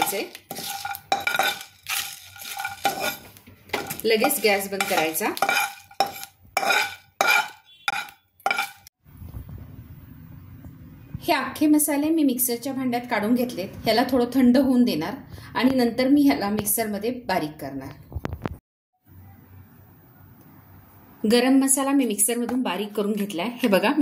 लगेच गॅस बंद करायचा। हे अख्खे मसाले मी मिक्सरच्या भांड्यात काढून घेतलेत। ह्याला थोडं थंड होऊन देणार आणि नंतर मी ह्याला मिक्सरमध्ये बारीक करणार। गरम मसाला मी मिक्सरमधून बारीक करून घेतलाय। हे बघा,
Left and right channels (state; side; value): identical; both; correlation 1.00